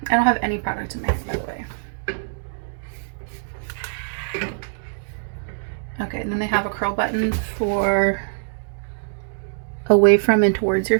I don't have any product in my hair, by the way. Okay, and then they have a curl button for away from and towards your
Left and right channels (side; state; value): left; silent; digital silence